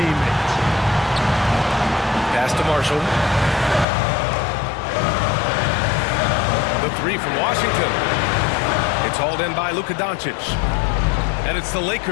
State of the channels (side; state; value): right; drops out; at 3.9 s